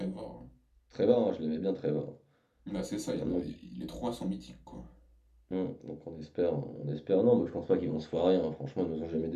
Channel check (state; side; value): identical; both; correlation 1.00